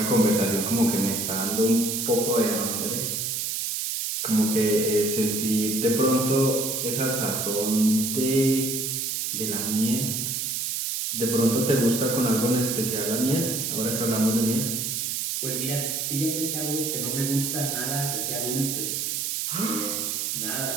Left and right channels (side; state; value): right; noise; hiss, 1 dB below the sound